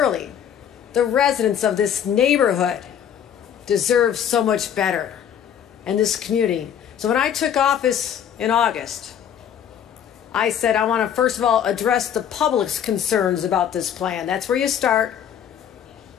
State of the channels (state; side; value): quieter; right; 9.1 dB